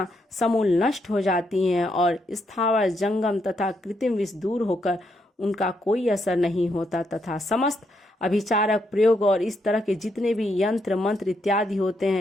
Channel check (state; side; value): normal; both; correlation 0.78